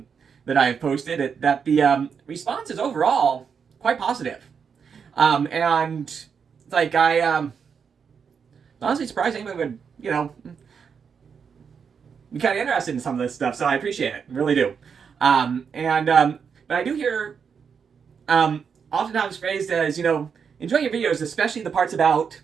I have posted. That the response is overall quite positive, and it's like I honestly surprised anyone would be kind of interested in some of this stuff, so I appreciate it, really do. But I do hear oftentimes phrased as, enjoy your videos, especially the parts about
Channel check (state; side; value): quieter; left; 6.5 dB